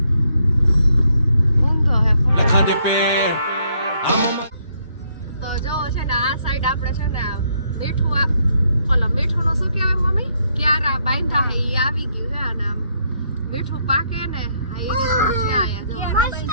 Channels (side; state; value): both; inverted; correlation -0.73